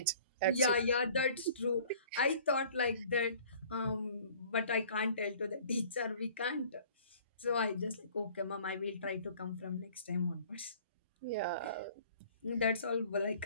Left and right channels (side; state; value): both; inverted; correlation -0.52